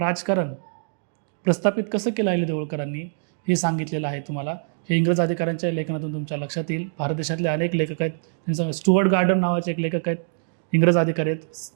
प्रस्थापित कसं केलं अहिल्यादेवी होळकरांनी हे सांगितलेलं आहे तुम्हाला. हे इंग्रज अधिकाऱ्यांच्या लेखनातून तुमच्या लक्षात येईल. भारत देशातले अनेक लेखक आहेत. त्यांचं स्टुअर्ट गार्डन नावाचे एक लेखक आहेत, इंग्रज अधिकारी आहेत,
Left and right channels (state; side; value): silent; left; digital silence